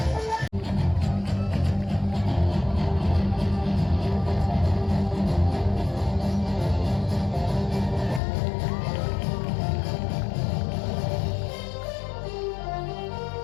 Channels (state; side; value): drops out; right; at 8.2 s